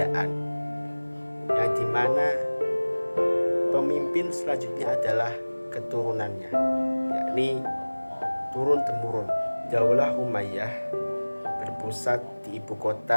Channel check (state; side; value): inverted; both; correlation -1.00